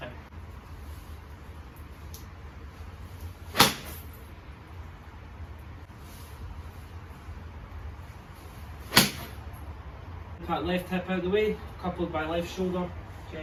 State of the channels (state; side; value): identical; both; correlation 1.00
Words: Impact left hip out of the way, coupled by left shoulder,